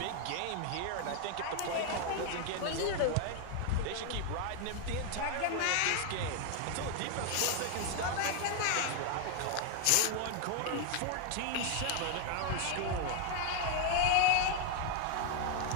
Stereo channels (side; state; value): both; different; correlation 0.00